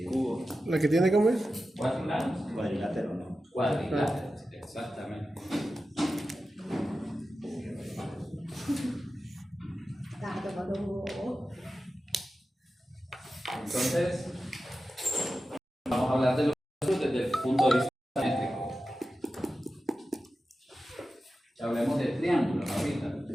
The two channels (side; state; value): both; normal; correlation 0.93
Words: ¿La que tiene cómo es? 4 lados. Cuadrilátero, ¿no? Cuadrilátero, exactamente. Entonces, vamos a hablar de los desde el punto de vista métrico. Hablemos de triángulos ahorita.